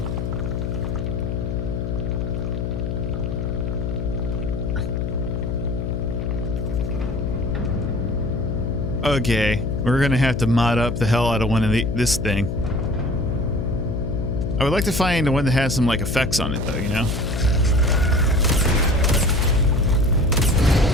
okay, we're gonna have to mod up the hell out of one of this thing. I would like to find one that has some like effects on it though, you know?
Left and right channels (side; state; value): left; noise; hum, 2 dB below the sound